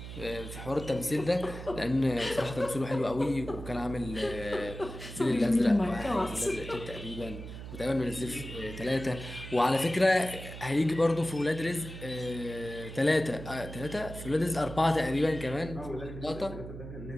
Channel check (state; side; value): noise; right; hum, 11 dB below the sound